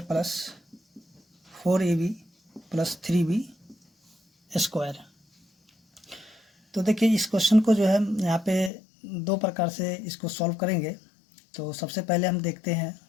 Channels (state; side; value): drops out; right; at 8.7 s